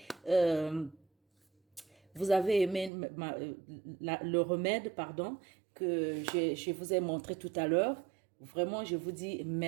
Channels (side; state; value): left; drops out; at 2.9 s